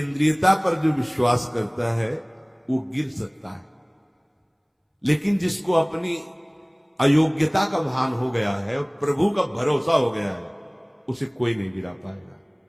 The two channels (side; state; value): both; identical; correlation 1.00